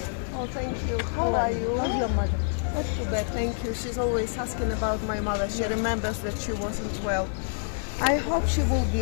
thank you. How are you? Love your mother. Not too Thank you. She's always asking about my mother. She remembers that she wasn't well. I hope she will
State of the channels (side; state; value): right; silent; digital silence